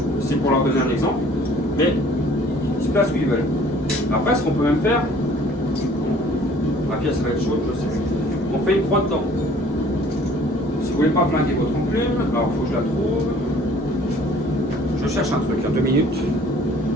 c'est pour leur donner un exemple, mais ils se placent où ils veulent. Après, ce qu'on peut même faire, ma pièce va être chaude, je sais plus, on fait une croix dedans. Si vous voulez pas flinguer votre enclume, alors il faut que je la trouve. Je cherche un truc, 2 minutes.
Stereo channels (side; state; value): both; normal; correlation 0.54